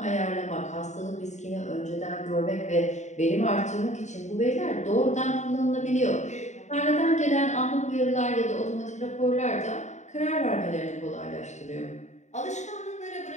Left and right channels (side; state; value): right; late; 0.34 ms